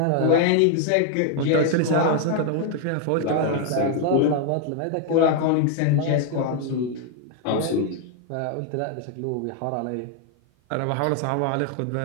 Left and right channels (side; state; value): both; different; correlation 0.00